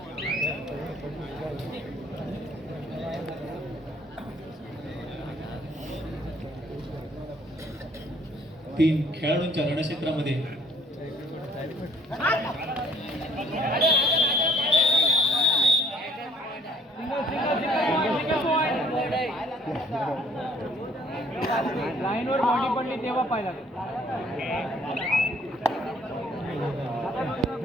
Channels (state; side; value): normal; both; correlation 0.60